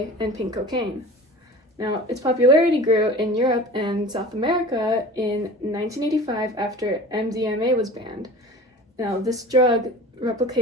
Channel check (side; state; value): both; normal; correlation 0.39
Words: and pink cocaine. Now, its popularity grew in Europe and South America in 1985 after MDMA was banned. Now, this drug